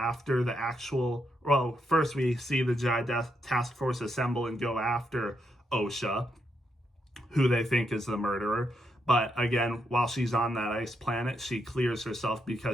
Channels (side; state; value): both; normal; correlation 0.80